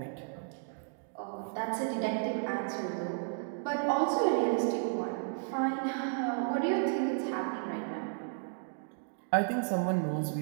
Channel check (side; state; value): left; silent; digital silence